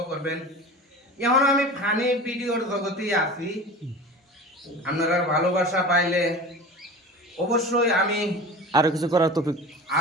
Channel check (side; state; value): both; normal; correlation 0.35